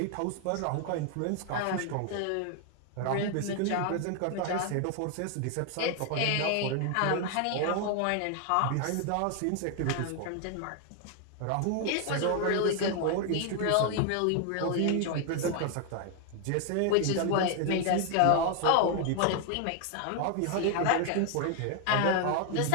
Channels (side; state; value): both; different; correlation 0.00